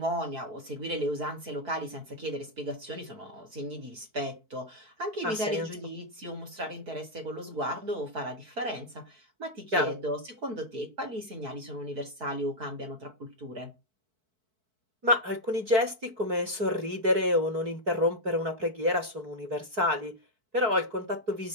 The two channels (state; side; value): late; left; 4.6 ms